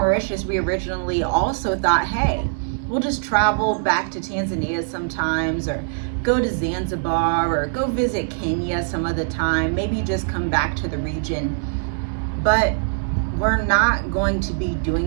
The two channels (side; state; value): left; silent; digital silence